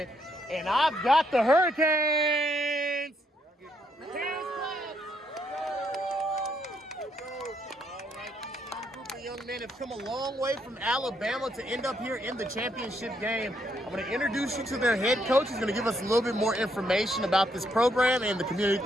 and I've got the Hurricanes. Young men have come a long way from Alabama to end up here in the championship game. I'm going to introduce you to their head coach. He's going to give us a little bit more information about this program and the community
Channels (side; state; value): both; normal; correlation 0.74